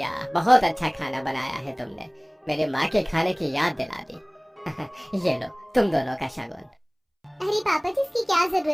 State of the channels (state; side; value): identical; both; correlation 1.00